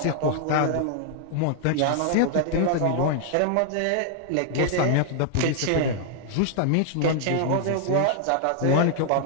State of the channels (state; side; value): different; both; correlation 0.00